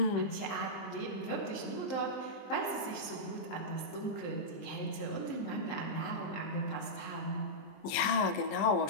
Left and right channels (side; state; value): right; late; 20 ms